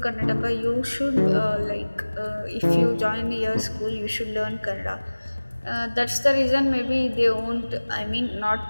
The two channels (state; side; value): inverted; both; correlation -1.00